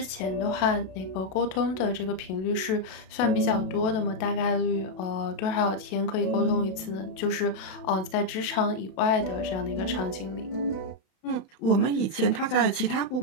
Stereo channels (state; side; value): late; right; 32 ms